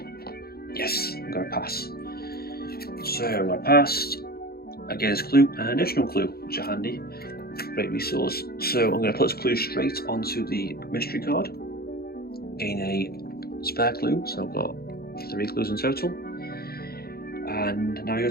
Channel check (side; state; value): right; late; 0.45 ms